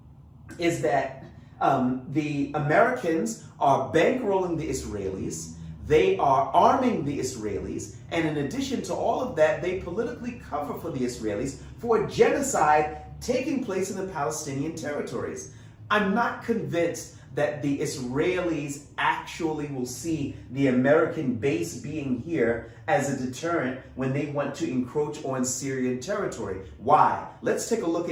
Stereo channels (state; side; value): identical; both; correlation 1.00